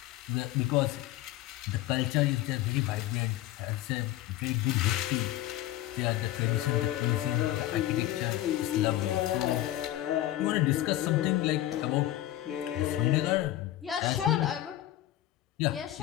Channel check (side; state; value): right; quieter; 14.4 dB